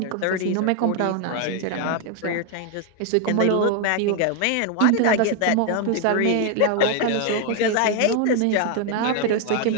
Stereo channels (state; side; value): different; both; correlation 0.01